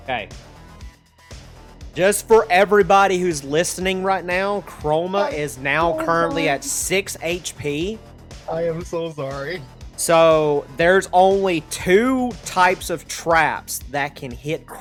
Okay. Just for everybody who's listening right now, Chroma is now currently at 6 HP. I am so sorry. So there's only 2 types of traps that can hit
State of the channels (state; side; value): identical; both; correlation 1.00